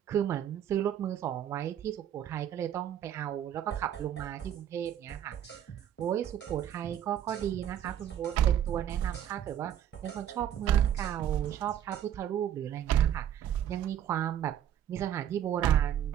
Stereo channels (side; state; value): left; quieter; 10.4 dB